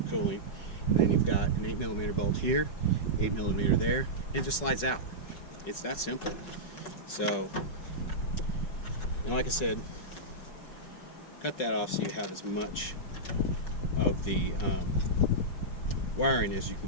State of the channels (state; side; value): late; right; 5.4 ms